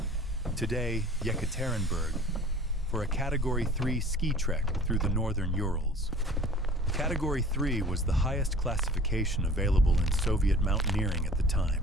today Yekaterinburg, for a Category 3 ski trek through the northern Urals. Category 3 was the highest classification available in Soviet mountaineering at the time.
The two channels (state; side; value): normal; both; correlation 0.46